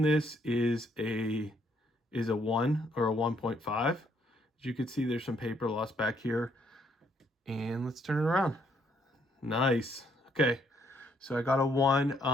this is a 1 or a 1.5. As you can see, there's some paper loss back here. And let's turn it around. Nice. Okay. So I got a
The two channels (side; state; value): both; normal; correlation 0.70